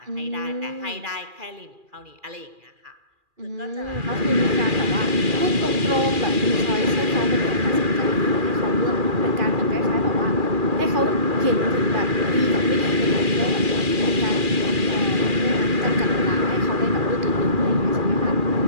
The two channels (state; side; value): late; left; 2.4 ms